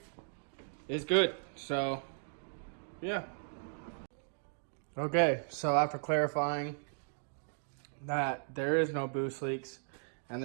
is good. So, yeah. Okay, so after clarifying that there is no boost leaks, and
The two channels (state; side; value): silent; left; digital silence